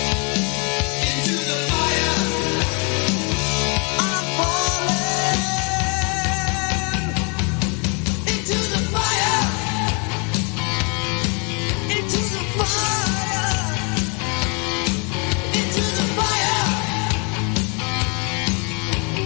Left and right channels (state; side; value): quieter; right; 34.4 dB